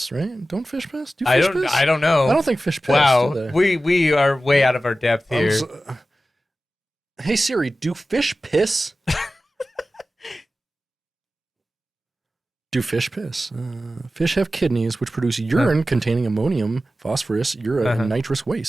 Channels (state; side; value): normal; both; correlation 0.94